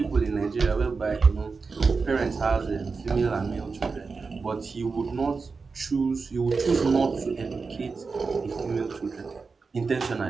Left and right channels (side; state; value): left; quieter; 4.6 dB